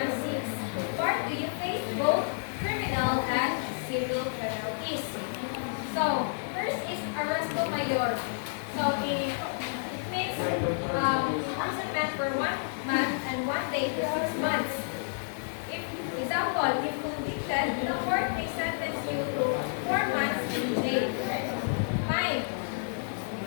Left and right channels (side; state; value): right; silent; digital silence